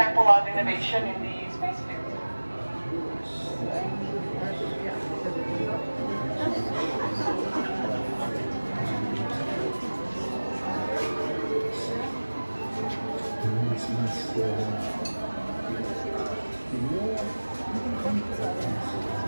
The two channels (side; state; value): both; inverted; correlation -1.00